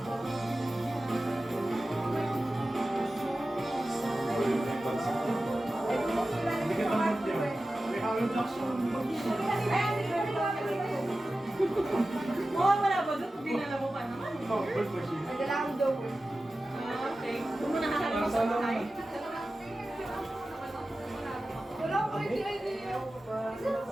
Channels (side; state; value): both; normal; correlation 0.95